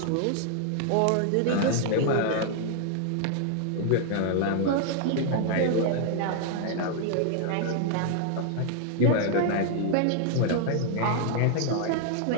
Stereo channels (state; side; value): different; both; correlation 0.00